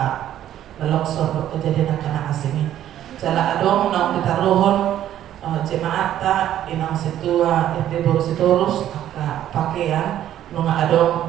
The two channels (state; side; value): quieter; left; 11.7 dB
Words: longsor kejadian kana asing jala adong nang ditaruhon jemaat ta inang situa ente baru sitorus aka pakaian nunga